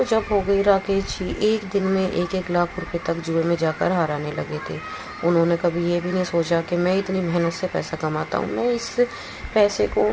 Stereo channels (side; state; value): both; identical; correlation 1.00